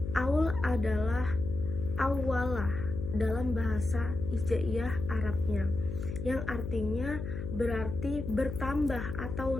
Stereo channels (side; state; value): left; noise; hum, 6 dB below the sound